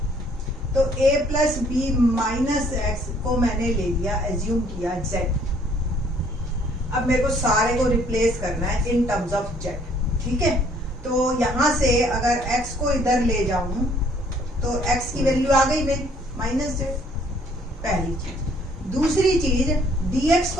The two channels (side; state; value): both; normal; correlation 0.61